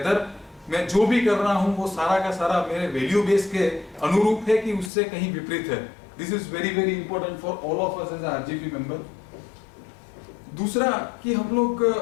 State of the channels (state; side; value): drops out; right; at 4.9 s